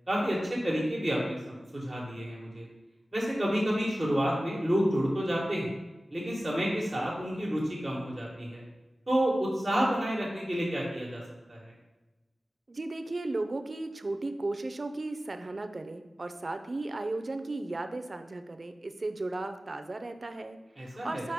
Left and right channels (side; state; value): both; normal; correlation 0.96